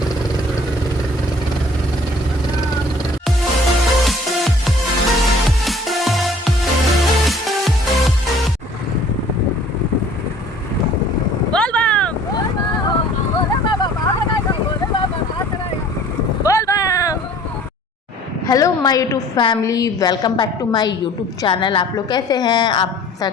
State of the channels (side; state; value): both; normal; correlation 0.52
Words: Hello my YouTube family, welcome back to my YouTube channel. आप लोग कैसे हैं? आप ऐसा